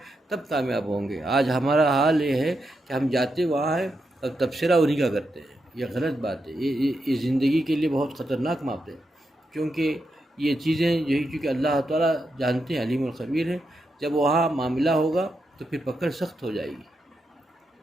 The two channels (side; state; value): both; normal; correlation 0.85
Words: تب کامیاب ہوں گے۔ آج ہمارا حال یہ ہے کہ ہم جاتے وہاں ہیں اور تبصرہ انہی کا کرتے ہیں، یہ غلط بات ہے، یہ زندگی کے لیے بہت خطرناک بات ہے، کیونکہ یہ چیزیں یہی چونکہ اللہ تعالیٰ جانتے ہیں، علیم الخبیر ہے، جب وہاں معاملہ ہوگا تو پھر پکڑ سخت ہو جائے گی،